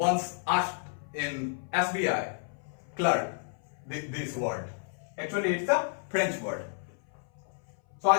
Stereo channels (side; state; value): right; silent; 57 dB below the other